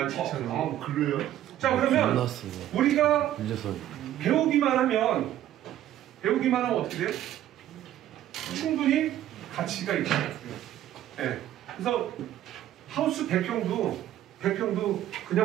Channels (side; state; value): left; quieter; 12.4 dB